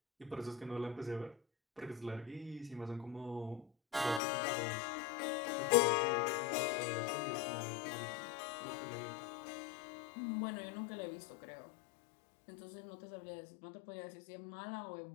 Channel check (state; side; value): drops out; right; at 4.2 s